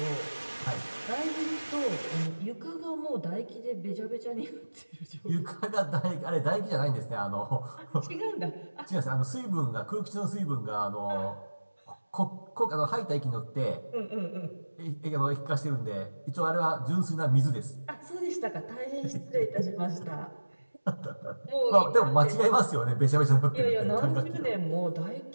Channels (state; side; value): inverted; both; correlation -1.00